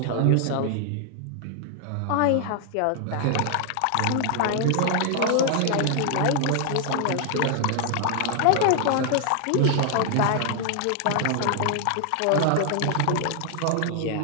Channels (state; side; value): different; both; correlation 0.00